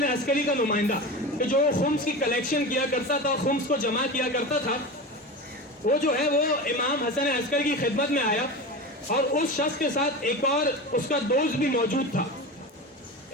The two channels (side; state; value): both; normal; correlation 0.27